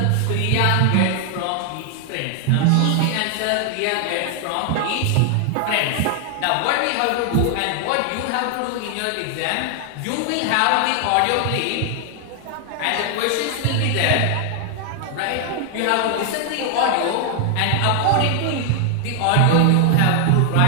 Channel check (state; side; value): different; both; correlation 0.00